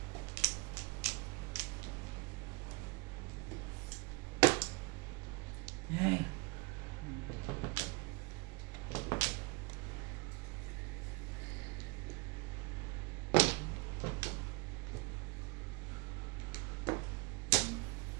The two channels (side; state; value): left; quieter; 26.9 dB